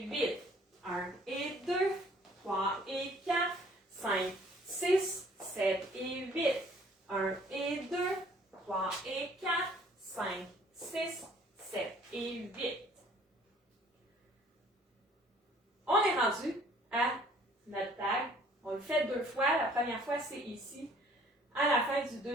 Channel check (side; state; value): both; normal; correlation 0.57